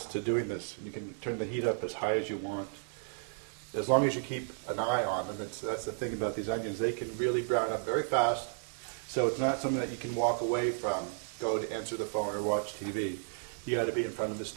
to doing this. You can turn the heat up as high as you want, as long as you keep an eye on them. That's the thing about these onions. They can really brown up very fast, so it's not something that you can walk away from, go to answer the phone or watch TV. You got to be in front of the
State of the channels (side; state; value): left; silent; 56 dB below the other